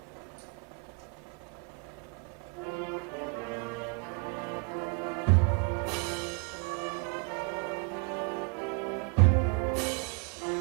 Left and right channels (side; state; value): left; quieter; 29.8 dB